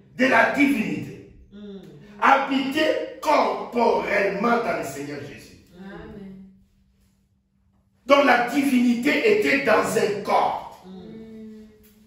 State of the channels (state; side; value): identical; both; correlation 1.00